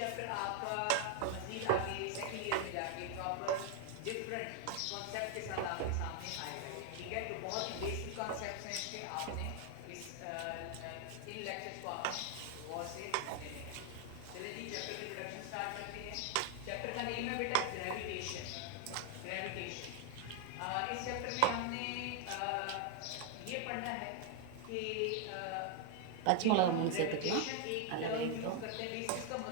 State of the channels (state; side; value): different; both; correlation 0.00